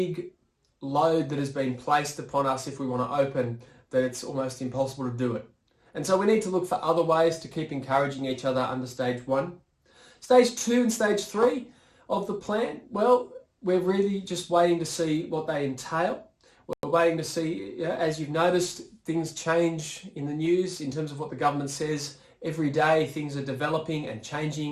load that has been placed upon us if we want to open that it's almost impossible to do it. And so we need to look for other ways to keep encouraging each other under stage one. Stage two and stage three of the plan, well, we're really just waiting to see what they entail. We're waiting to see, as you've noticed, things change in the news in terms of what the government says. Every day things are developing and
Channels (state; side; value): identical; both; correlation 1.00